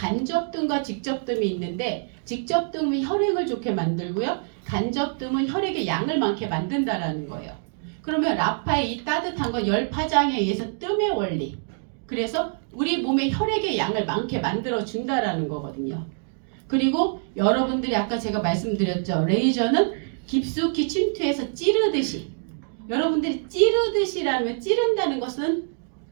직접뜸이 있는데 직접뜸이 혈액을 좋게 만들고요. 간접뜸은 혈액의 양을 많게 만든다라는 거예요. 그러면 라파의 이 따뜻한 건 열 파장에 의해서 뜸의 원리. 그래서 우리 몸의 혈액의 양을 많게 만들어 준다라는 거거든요. 그리고 여러분들이 아까 제가 말씀드렸죠. 레이저는 깊숙이 침투해서 찌르듯이. 여러분들이 찌르듯이라면 찌른다는 것은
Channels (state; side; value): silent; left; digital silence